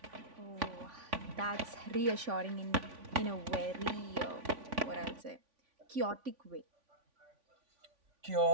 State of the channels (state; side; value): late; left; 3.5 ms